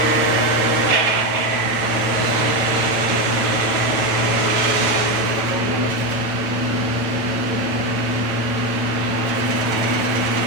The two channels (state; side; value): late; left; 9.1 ms